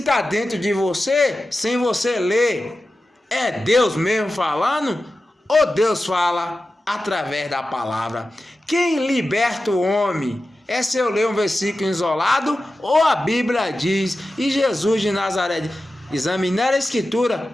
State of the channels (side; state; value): both; normal; correlation 0.93